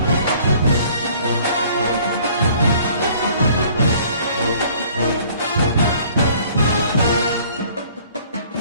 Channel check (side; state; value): both; inverted; correlation -0.55